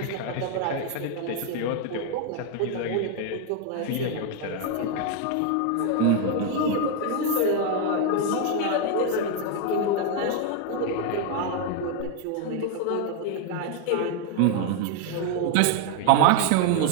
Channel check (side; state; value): both; different; correlation 0.00